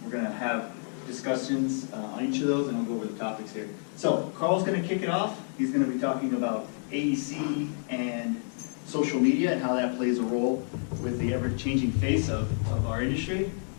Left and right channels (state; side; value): silent; right; 59 dB below the other